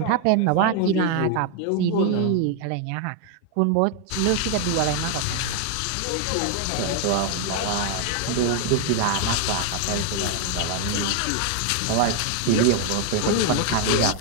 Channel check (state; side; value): different; both; correlation 0.00